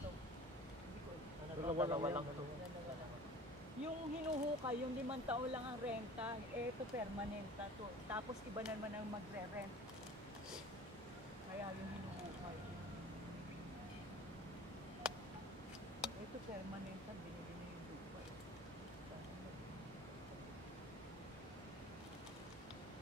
Dalawa lang ito. Yung hinuhukay, yung 5 taon lang ang renta, ito permanent na to. Tapos iba naman ang magre-rent. Kaya yung hinuhukay. Ito permanent na, binili na yung lupa.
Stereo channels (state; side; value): normal; both; correlation 0.42